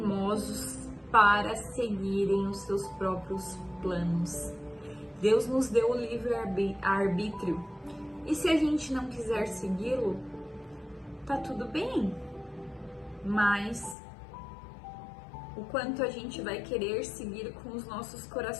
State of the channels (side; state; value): right; drops out; at 14.0 s